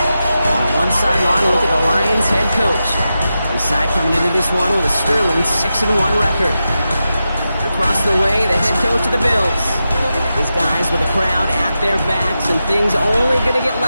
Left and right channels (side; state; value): both; inverted; correlation -0.90